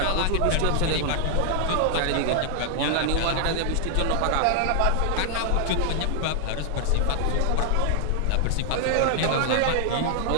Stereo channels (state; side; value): different; both; correlation 0.00